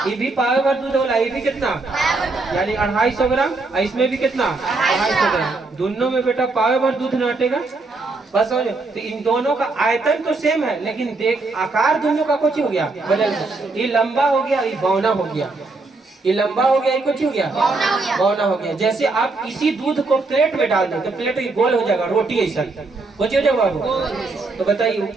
ये भी पावे भर दूध होला, ये भी कितना यानी 250 ग्राम, इसमें भी कितना 250 ग्राम, दोनों में बेटा पावे भर दूध न हटेगा बस। तो इन दोनों का आयतन तो सेम है, लेकिन देख आकार दोनों का कुछ हो गया बदल, ये लंबा हो गया, ये बौना हो गया, ये लंबा हो गया, ये कुछ हो गया बौना हो गया। जैसे आप इसी दूध को प्लेट में डाल दो तो प्लेट गोल हो जाएगा, रोटी ऐसा कुछ हो जाएगा बाबू। तो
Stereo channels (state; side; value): quieter; left; 3.5 dB